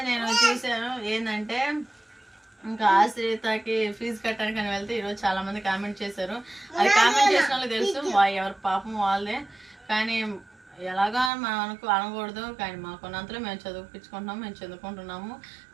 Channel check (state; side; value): drops out; left; at 11.3 s